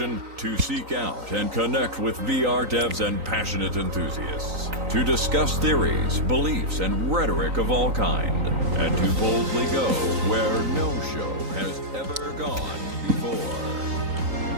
To seek out and connect with VR devs and passionate enthusiasts. To discuss theories, beliefs, and rhetoric of all kind. And to boldly go where no show has ever gone before.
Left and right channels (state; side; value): late; left; 3.9 ms